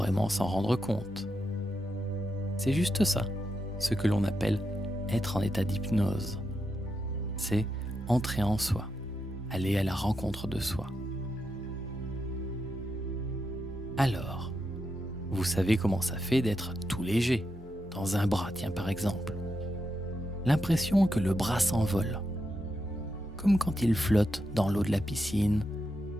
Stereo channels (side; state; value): both; normal; correlation 0.85